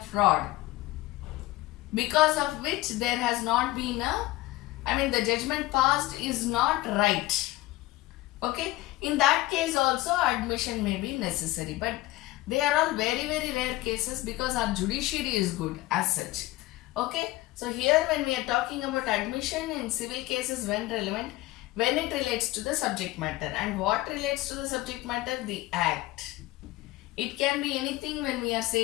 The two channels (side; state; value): right; quieter; 18.2 dB